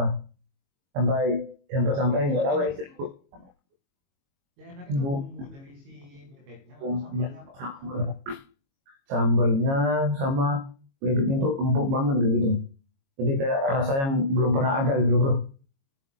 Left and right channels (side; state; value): left; late; 22 ms